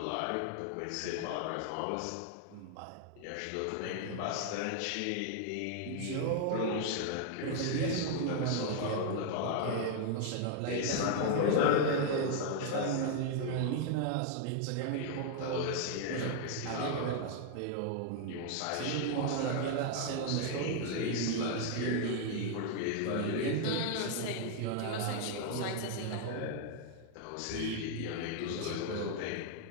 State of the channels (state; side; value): different; both; correlation 0.00